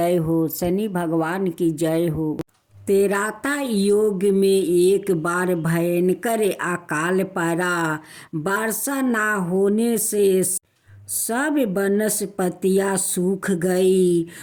हो, शनि भगवान की जय हो। तेराता योग में एक बार भयंकर अकाल पड़ा। वर्षा ना होने से सब वनस्पतियां सूख गई।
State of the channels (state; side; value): identical; both; correlation 1.00